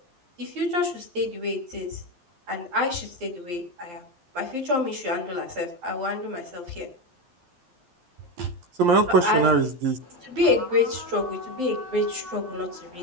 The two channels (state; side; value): late; left; 12 ms